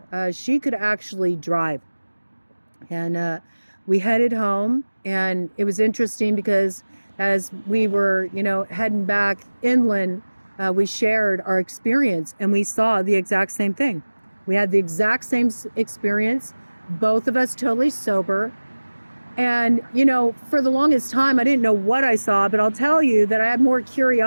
she could actually drive. And we headed home, and it was interesting because as we were, you know, heading back inland, we shared our experience, and we saw the exact same thing. We had the exact same experience, both of us totally sober. And, you know, for the longest time, I didn't know what I saw, but I'll tell you that I had more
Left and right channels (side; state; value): both; inverted; correlation -1.00